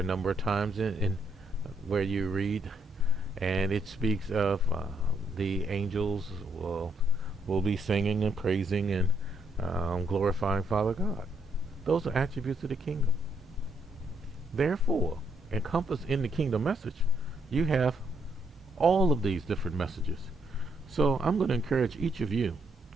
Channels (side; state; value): both; normal; correlation 0.74